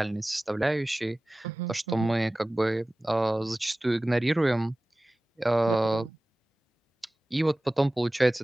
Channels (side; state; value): both; normal; correlation 0.97